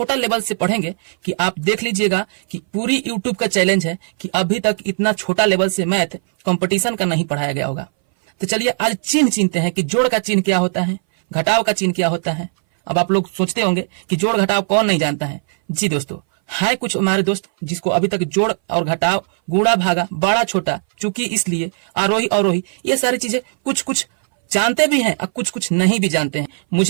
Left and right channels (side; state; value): left; silent; 61 dB below the other